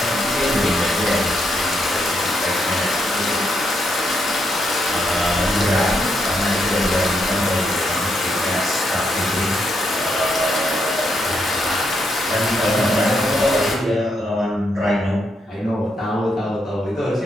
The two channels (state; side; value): normal; both; correlation 0.79